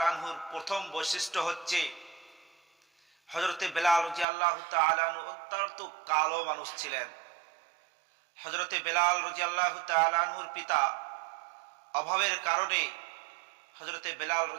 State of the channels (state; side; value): drops out; left; at 4.2 s